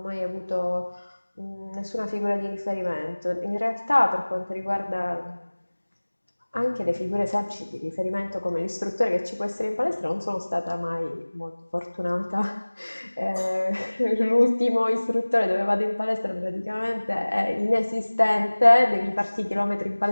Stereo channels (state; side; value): inverted; both; correlation -1.00